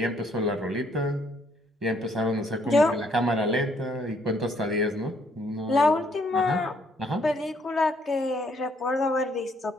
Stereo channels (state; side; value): normal; both; correlation 0.68